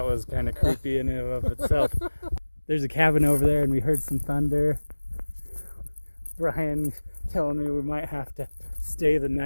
was kind of creepy in and of itself. There's a cabin over there, and we heard some thunder. Brian telling me we might have to stay the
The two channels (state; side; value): inverted; both; correlation -1.00